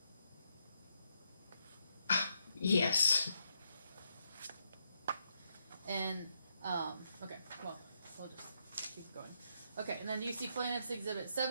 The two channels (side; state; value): both; inverted; correlation -0.79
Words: Yes. And okay, well, we'll just keep going. Okay, and then do you see Plaintiff's Exhibit